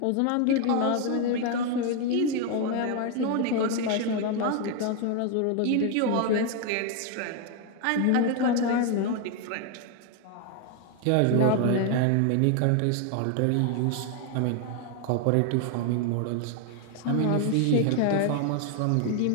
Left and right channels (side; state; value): both; different; correlation 0.01